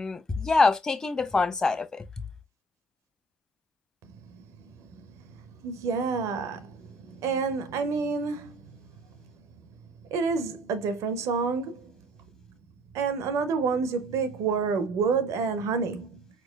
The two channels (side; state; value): both; normal; correlation 0.53